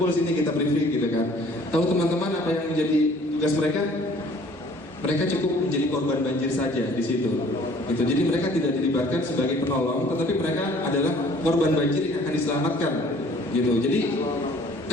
sini, kita briefing gitu kan. Tahu teman-teman apa yang menjadi tugas mereka? Mereka cukup menjadi korban banjir saja di situ. Gitu. Jadi mereka tidak dilibatkan sebagai penolong, tetapi mereka adalah korban banjir yang akan diselamatkan. Gitu. Jadi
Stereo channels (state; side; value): normal; both; correlation 0.54